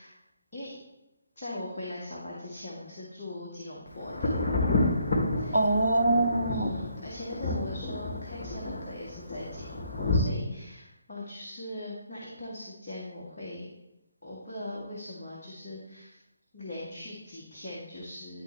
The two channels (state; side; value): inverted; both; correlation -0.69